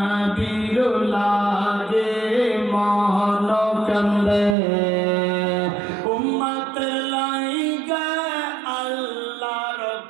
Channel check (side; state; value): left; drops out; at 4.5 s